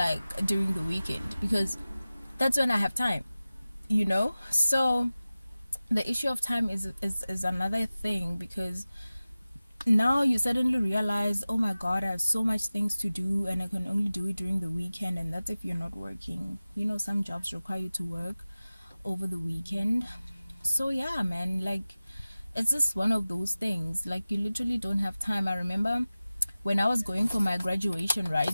during the weekend, because that's when I have time, you know. So the issue of time is another thing, because now you suddenly realize, oh my god, I have so much things to do and I can only do it during the weekend. And that's if you're not working. You know, some jobs require you to work over the weekend. So yeah, man, like, it's just one of those things. Like, you literally don't have time. I remember when I was going for my graduation,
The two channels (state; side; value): inverted; both; correlation -0.97